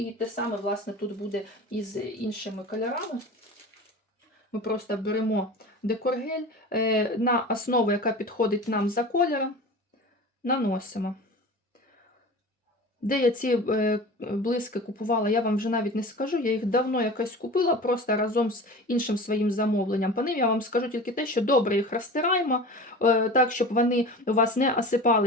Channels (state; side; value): normal; both; correlation 0.35